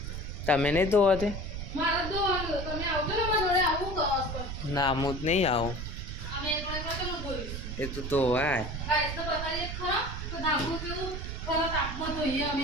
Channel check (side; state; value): right; noise; rumble, 6 dB below the sound